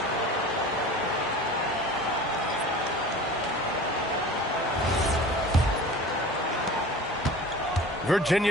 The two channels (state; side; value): normal; both; correlation 0.39